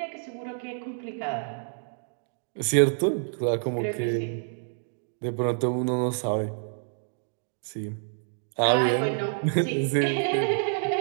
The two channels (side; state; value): left; silent; digital silence